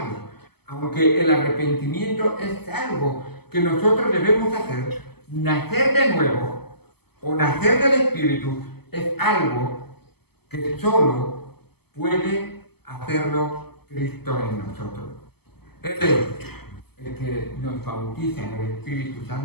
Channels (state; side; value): late; right; 0.97 ms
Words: aunque el arrepentimiento es algo que nosotros debemos hacer. Nacer de nuevo o nacer del Espíritu es algo que solo puede hacerlo Cristo en nosotros. Él es el que nos bautiza en el Espíritu